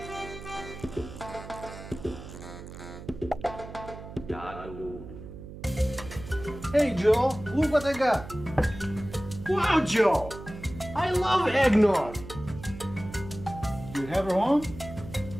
Hey Joe, look what I got. Wow, Joe! I love eggnog. You have a home?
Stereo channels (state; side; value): noise; right; hum, 13 dB below the sound